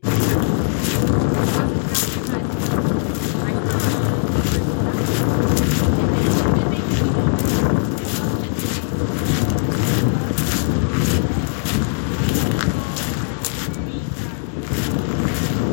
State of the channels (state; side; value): silent; right; digital silence